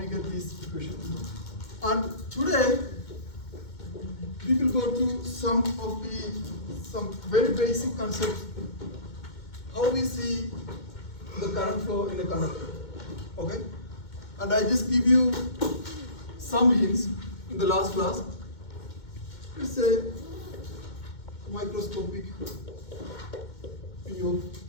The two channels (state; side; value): late; right; 2.2 ms